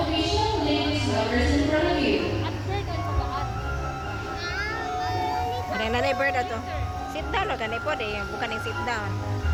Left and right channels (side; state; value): both; identical; correlation 1.00